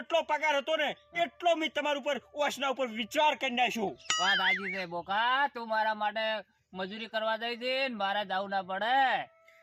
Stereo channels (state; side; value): identical; both; correlation 1.00